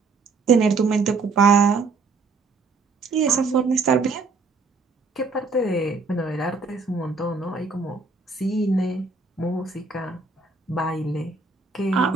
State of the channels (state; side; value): quieter; left; 4.1 dB